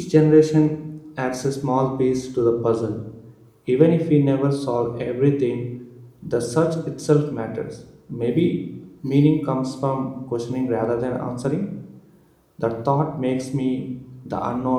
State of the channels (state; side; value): identical; both; correlation 1.00